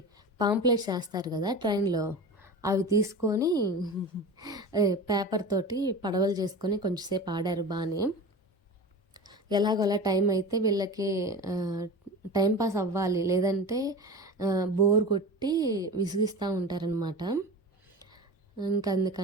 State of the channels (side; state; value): both; normal; correlation 0.31